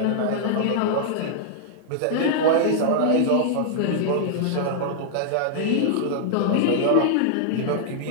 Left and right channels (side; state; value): both; different; correlation -0.01